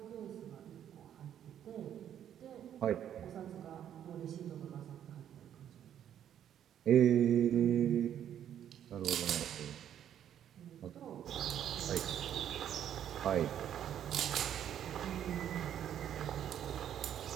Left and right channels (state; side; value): quieter; left; 10.1 dB